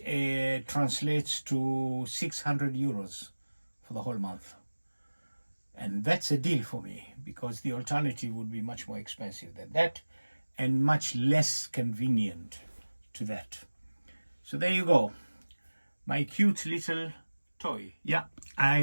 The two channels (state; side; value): inverted; both; correlation -1.00